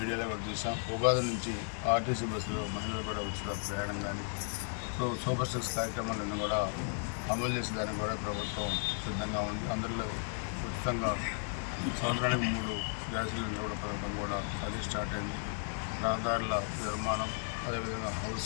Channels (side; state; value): right; silent; 55 dB below the other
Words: కూడా చూసాం, ఉగాది నుంచి ఆర్టీసీ బస్సులో మహిళలు కూడా ఉచిత ప్రయాణం కానీ, సో సూపర్ సిక్స్ కార్యక్రమాలన్నీ కూడా అమలు చేసేదానికి కూడా ప్రభుత్వం సిద్ధంగా ఉంది. అందులో ఉచితంగా సంవత్సరానికి 3 గ్యాస్ సిలిండర్ కూడా పథకం కూడా అది స్టార్ట్ అయింది. రహదారుల నిర్మాణం, అదేవిధంగా